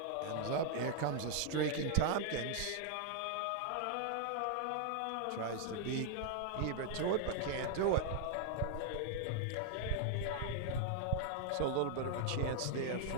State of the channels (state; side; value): different; both; correlation 0.00